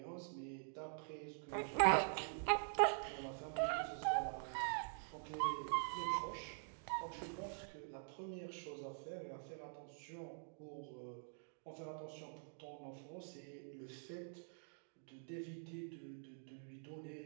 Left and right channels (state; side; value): silent; left; digital silence